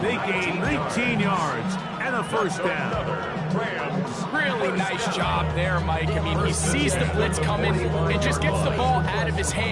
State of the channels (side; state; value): both; identical; correlation 1.00